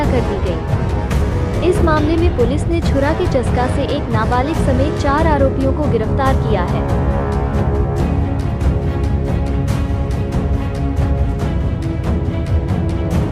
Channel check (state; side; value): identical; both; correlation 1.00